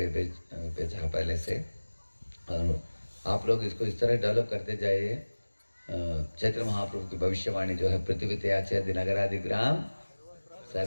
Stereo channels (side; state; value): both; inverted; correlation -1.00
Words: पहले से, और आप लोग इसको इस तरह डेवलप करते जाइए, चैत्र महाप्रभु की भविष्यवाणी जो है, पृथ्वी त्याचे दिनगरादि ग्राम